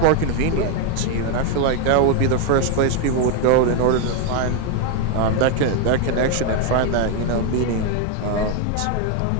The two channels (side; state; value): both; different; correlation 0.01